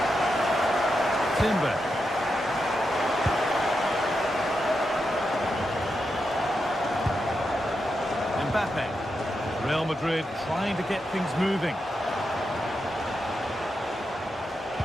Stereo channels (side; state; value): both; normal; correlation 0.86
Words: Timber. Mbappe. Real Madrid trying to get things moving.